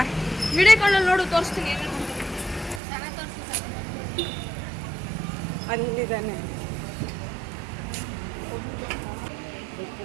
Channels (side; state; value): left; drops out; at 2.8 s